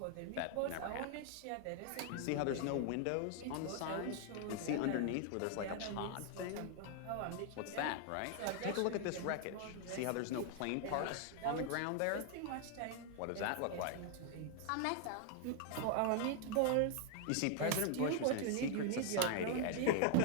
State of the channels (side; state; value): both; different; correlation 0.00